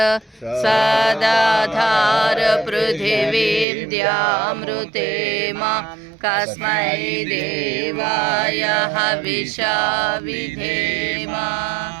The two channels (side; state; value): left; drops out; at 3.7 s